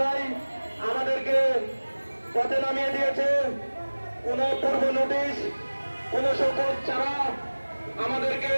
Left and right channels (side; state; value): both; inverted; correlation -1.00